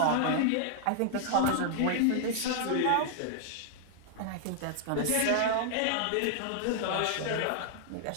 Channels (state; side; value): different; both; correlation -0.01